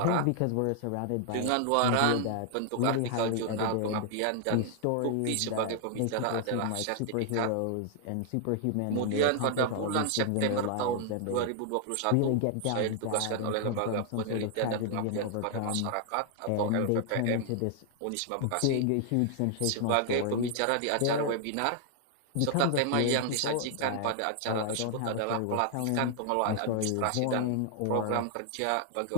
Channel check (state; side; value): different; both; correlation 0.00